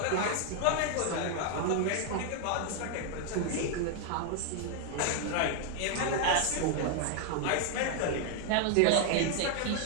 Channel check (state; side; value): different; both; correlation 0.00